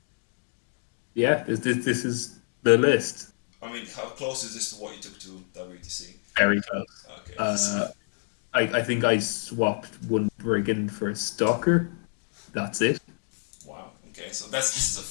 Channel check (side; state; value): right; silent; 59 dB below the other